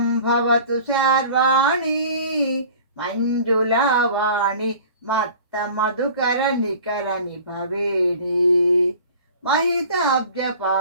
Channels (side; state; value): both; inverted; correlation -0.44